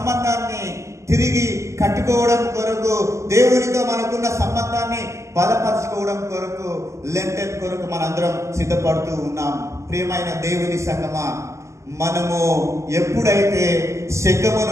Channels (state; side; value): late; left; 0.14 ms